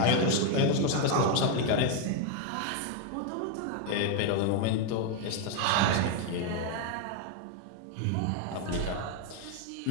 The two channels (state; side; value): different; both; correlation 0.01